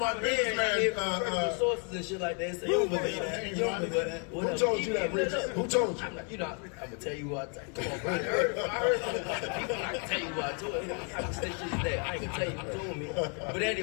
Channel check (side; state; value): right; quieter; 38.8 dB